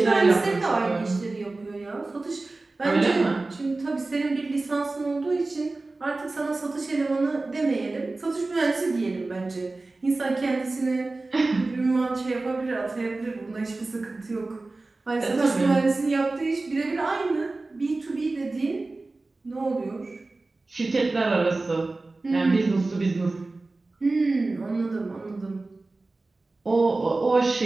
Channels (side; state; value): left; quieter; 3.3 dB